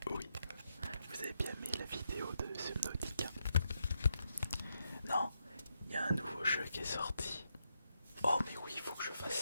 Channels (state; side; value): inverted; both; correlation -0.83